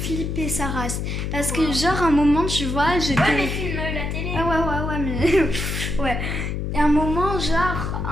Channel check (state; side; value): noise; left; hum, 3 dB below the sound